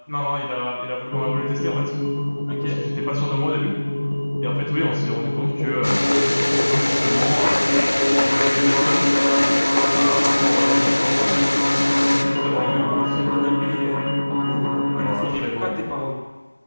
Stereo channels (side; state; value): both; inverted; correlation -1.00